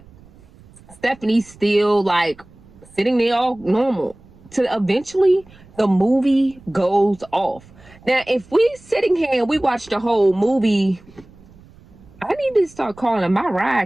Stephanie's still like sitting there all normal. To eventually the movie goes off. Now, if we sitting here and we watch the whole movie, I need to start calling my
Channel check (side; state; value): right; noise; rumble, 25 dB below the sound